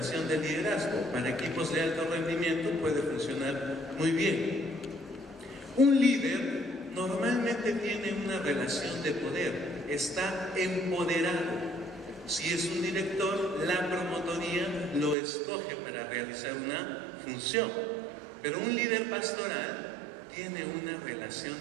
del liderazgo. Para equipos de alto rendimiento puede funcionar muy bien. Un líder normalmente tiene una relación de poder, está empoderado. Si es un director, la promotoría lo escoge para realizar una función. Pero un líder pastoral tiene una relación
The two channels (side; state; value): left; drops out; at 15.2 s